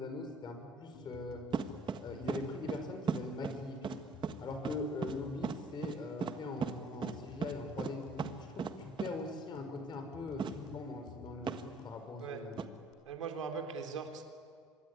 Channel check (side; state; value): both; normal; correlation 0.56